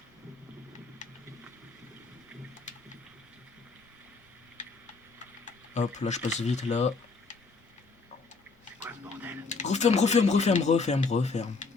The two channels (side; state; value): right; quieter; 4.2 dB